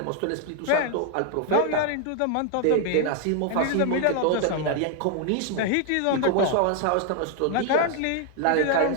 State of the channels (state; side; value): different; both; correlation 0.00